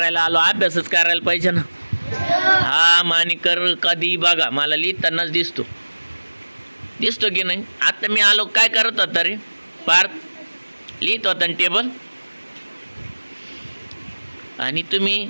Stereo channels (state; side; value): inverted; both; correlation -1.00